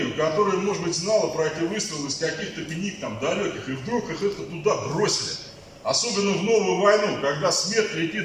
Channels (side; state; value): both; identical; correlation 1.00